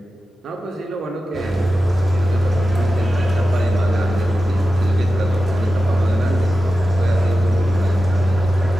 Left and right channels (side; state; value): both; normal; correlation 0.93